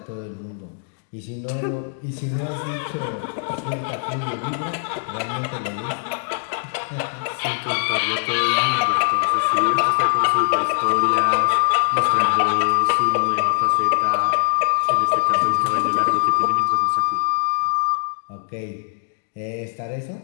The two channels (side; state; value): right; silent; digital silence